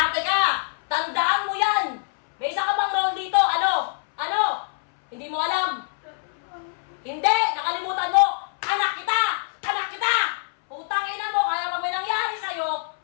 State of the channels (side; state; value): right; silent; 62 dB below the other